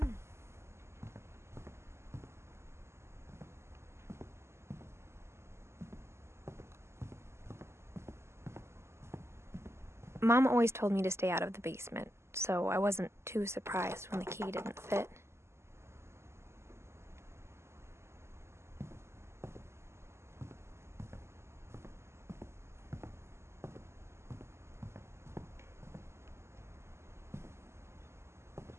Mom always told me to stay out of the basement, so I wasn't too surprised when the key didn't fit.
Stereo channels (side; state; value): left; late; 0.13 ms